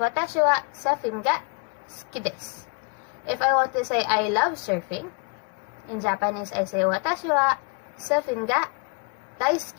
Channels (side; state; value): right; quieter; 33.5 dB